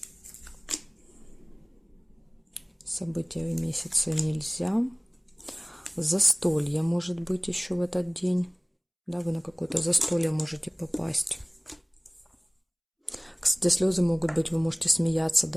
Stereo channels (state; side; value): identical; both; correlation 1.00